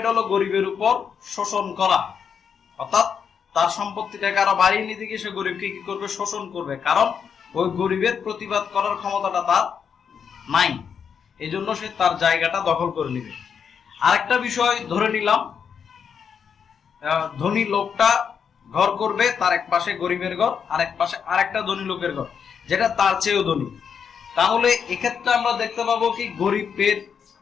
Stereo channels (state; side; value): quieter; right; 7.0 dB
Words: হলো গরিবের উপর শোষণ করা, অর্থাৎ তার সম্পত্তিটাকে আরো বাড়িয়ে নিতে গিয়ে সে গরিবকে কি করবে, শোষণ করবে। কারণ ওই গরিবের প্রতিবাদ করার ক্ষমতাটা তার নাই, এই জন্য সে তার জায়গাটা দখল করে নিবে। আরেকটা বিষয় ধরে নিলাম, ধনী লোকটা ঘর করবে, তার এক পাশে গরিবের ঘর, আর এক পাশে আরেকটা ধনী লোকের ঘর যেটা তার চেয়েও ধনী। তাহলে এক্ষেত্রে আমরা দেখতে পাবো কি, গরিবের